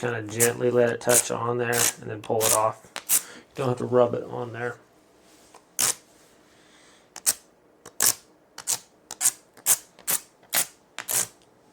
of gently let it touch on there and then pull it off. You don't have to rub it on there.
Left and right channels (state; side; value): identical; both; correlation 1.00